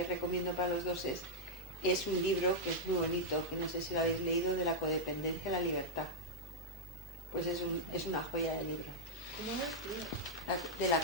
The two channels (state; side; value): normal; both; correlation -0.04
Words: recomiendo para los 2 es un libro que es muy bonito, que no sé si lo habéis leído, de la codependencia a la libertad. Pues es una joya de libro. ¿Cómo es? De la